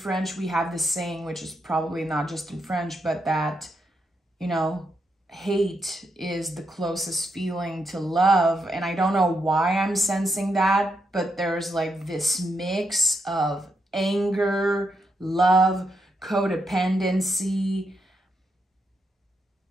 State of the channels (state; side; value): normal; both; correlation 0.81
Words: we have this saying, which is probably not just in French, but that, you know, hate is the closest feeling to love. And I don't know why I'm sensing that, but there's like this mix of anger, love, codependency.